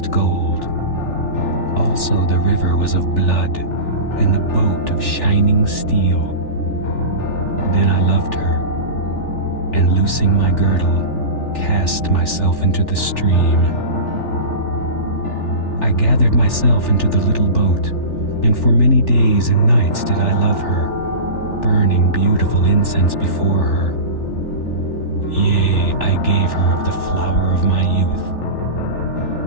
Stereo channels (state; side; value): late; right; 3.4 ms